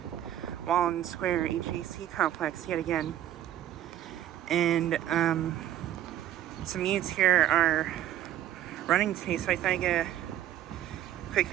Walden Square HVAC Complex yet again, and some units here are running today, so I thought I'd get a quick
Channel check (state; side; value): quieter; left; 12.1 dB